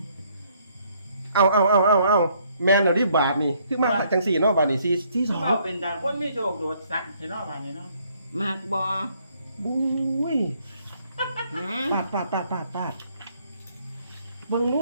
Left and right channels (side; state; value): both; inverted; correlation -0.67